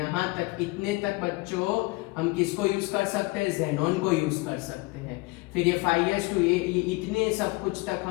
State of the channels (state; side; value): quieter; right; 23.8 dB